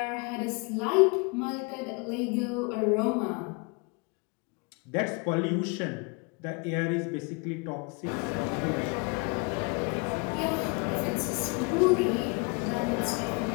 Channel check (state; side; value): quieter; right; 30.9 dB